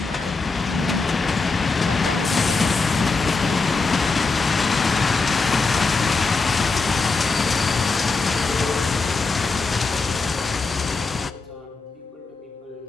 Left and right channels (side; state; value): right; quieter; 4.1 dB